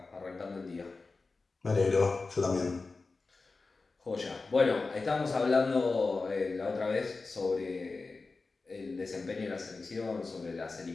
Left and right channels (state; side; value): quieter; right; 3.9 dB